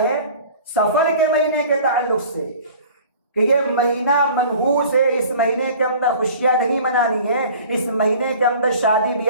سفر کے مہینے کے تعلق سے کہ یہ مہینہ منحوس ہے، اس مہینے کے اندر خوشیاں نہیں منانی ہیں، اس مہینے کے اندر شادی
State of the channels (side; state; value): both; inverted; correlation -0.45